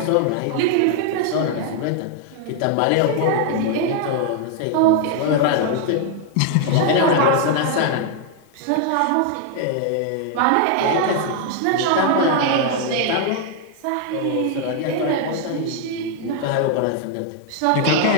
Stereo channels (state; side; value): different; both; correlation 0.00